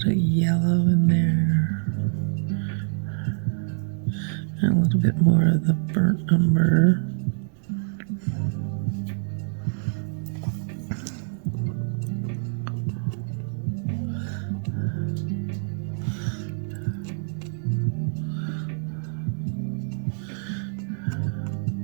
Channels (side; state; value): left; silent; digital silence